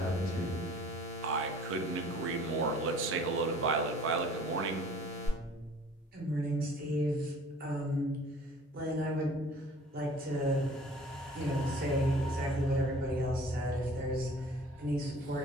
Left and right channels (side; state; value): both; normal; correlation 0.50